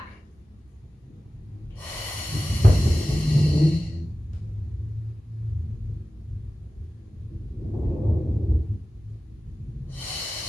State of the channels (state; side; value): normal; both; correlation 0.95